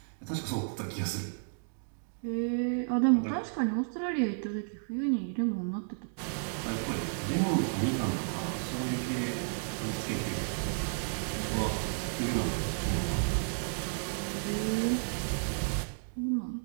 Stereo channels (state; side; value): silent; left; digital silence